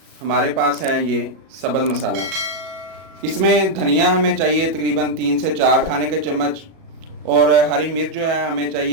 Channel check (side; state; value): left; late; 37 ms